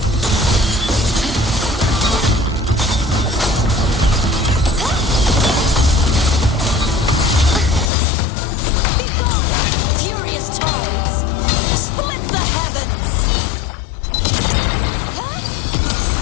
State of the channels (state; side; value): drops out; right; at 7.9 s